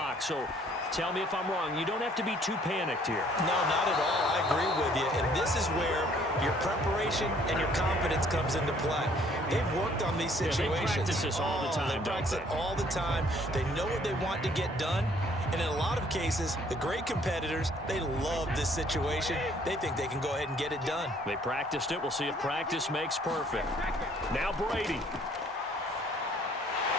So tell me if I'm wrong. You don't have to be too panicked here. No, not at all. I agree with you. And this is where your preparation and your confidence comes into play. They've worked on these situations. They practice this all the time, They practice it all the time. They know what they want to get done. And in a lot of cases, the great competitors, they love this situation. They think they can go ahead and get it done. They practiced it. We'll see if practice makes perfect. Now Brady.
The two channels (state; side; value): normal; both; correlation 0.61